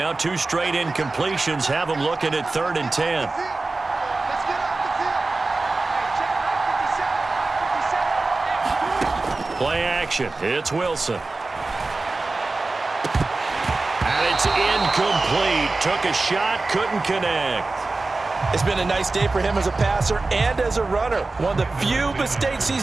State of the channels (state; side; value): quieter; left; 3.4 dB